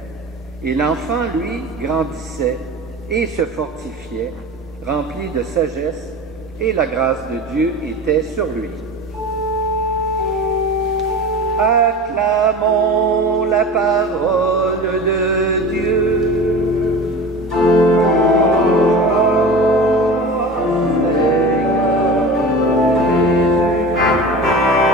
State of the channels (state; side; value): normal; both; correlation 0.33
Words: et l'enfant, lui, grandissait et se fortifiait, rempli de sagesse, et la grâce de Dieu était sur lui. Acclamons la parole de Dieu.